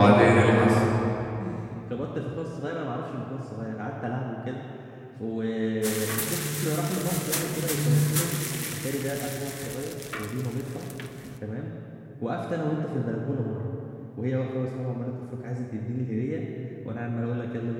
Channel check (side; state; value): both; identical; correlation 1.00